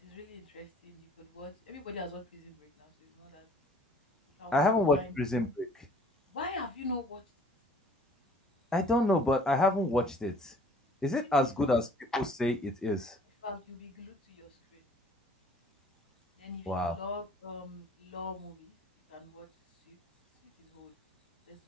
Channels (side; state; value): both; normal; correlation 0.54